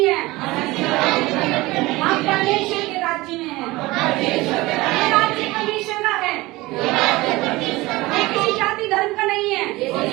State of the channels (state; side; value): quieter; left; 20.5 dB